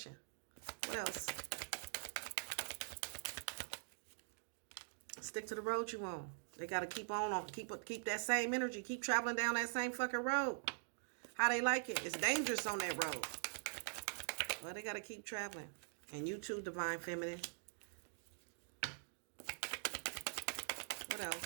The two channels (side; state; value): left; silent; digital silence